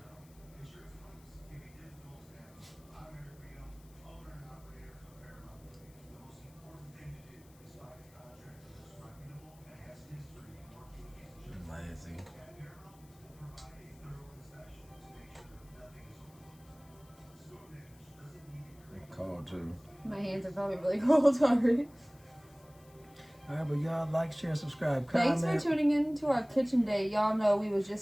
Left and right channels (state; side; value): noise; left; hiss, 27 dB below the sound